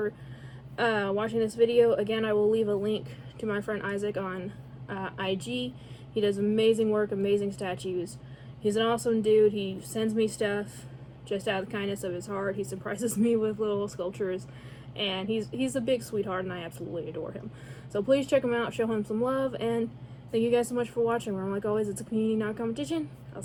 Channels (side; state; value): both; identical; correlation 1.00